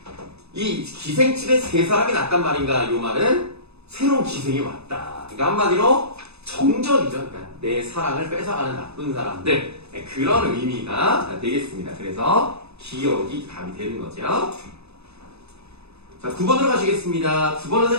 이 기생집에 세 사람이 났단 말인가 요 말은 새로운 기생이 왔다. 그러니까 한마디로 정적이죠. 그러니까 내 사랑을 뺏어가는 나쁜 사람들 그런 의미가 되겠습니다. 그래서 기억이 답이 되는 거죠. 자, 9번으로 가시겠습니다. 9번은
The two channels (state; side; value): late; left; 0.79 ms